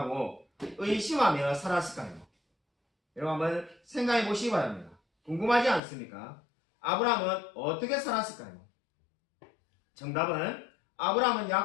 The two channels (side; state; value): right; drops out; at 5.8 s